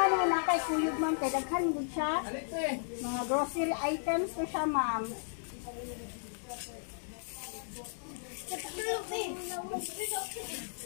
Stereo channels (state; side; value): silent; right; digital silence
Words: mo na kay kuyog ma'am, kay daghan gud siya. Mga grocery items to siya ma'am.